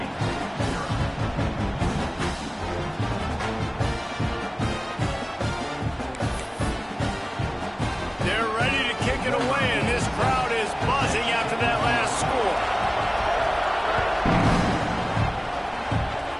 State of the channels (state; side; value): identical; both; correlation 1.00